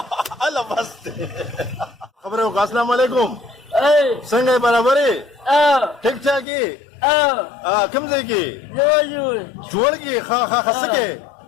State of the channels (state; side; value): drops out; right; at 6.5 s